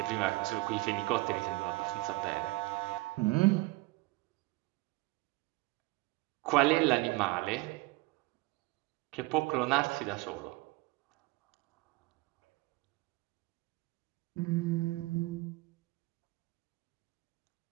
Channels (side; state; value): left; quieter; 22.5 dB